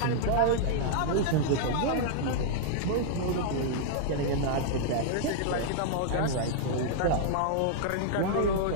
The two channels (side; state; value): both; different; correlation -0.01